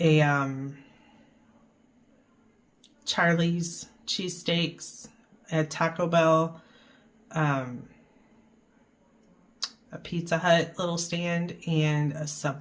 a Charlie's cheesesteaks, a Taco Bell, a Pizza Hut little stand, and a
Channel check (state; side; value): identical; both; correlation 1.00